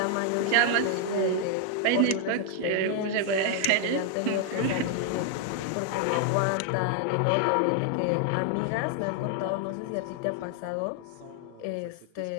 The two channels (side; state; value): both; different; correlation 0.00